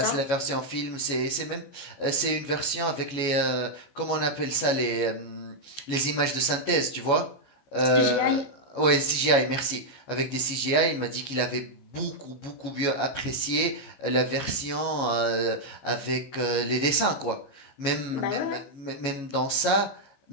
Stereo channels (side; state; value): right; late; 15 ms